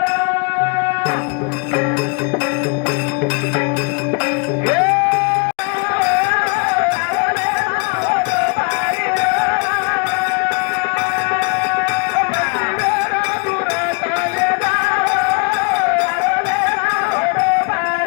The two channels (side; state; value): right; quieter; 33.5 dB